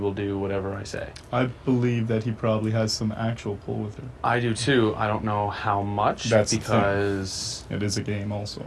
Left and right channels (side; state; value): both; identical; correlation 1.00